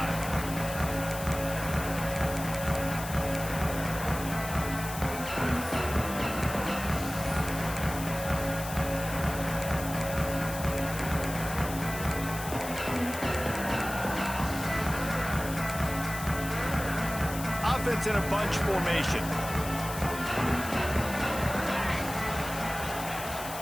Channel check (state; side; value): noise; left; hiss, 10 dB below the sound